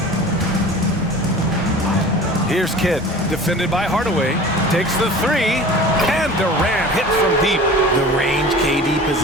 Here's Kidd, defended by Hardaway. Takes the 3, and Durant hits from deep. The range KD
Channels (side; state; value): both; normal; correlation 0.40